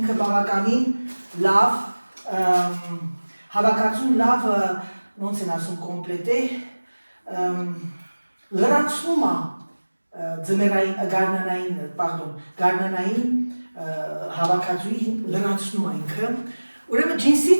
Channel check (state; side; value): inverted; both; correlation -1.00